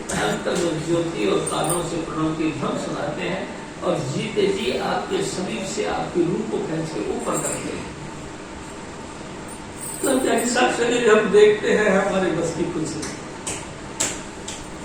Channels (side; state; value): both; identical; correlation 1.00